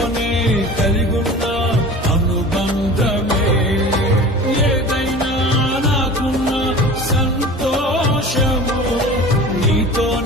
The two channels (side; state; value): both; normal; correlation 0.38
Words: కలిగున్న అనుబంధమే ఏదైనా నాకున్న సంతోషము